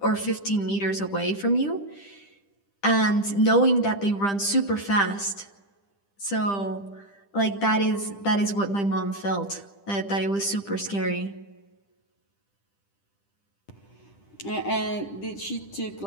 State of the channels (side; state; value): right; late; 10 ms